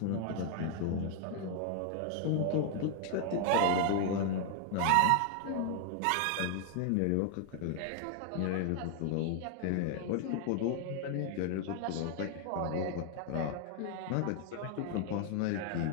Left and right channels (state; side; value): different; both; correlation 0.00